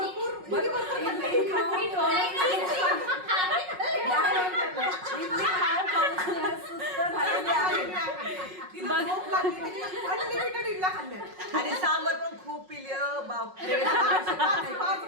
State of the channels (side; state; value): left; late; 5.4 ms